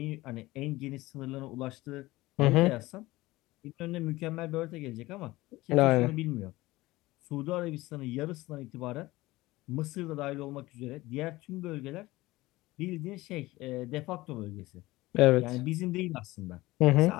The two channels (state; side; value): quieter; right; 19.1 dB